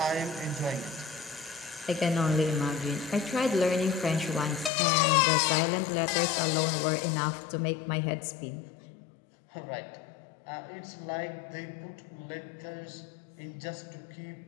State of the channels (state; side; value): drops out; right; at 4.7 s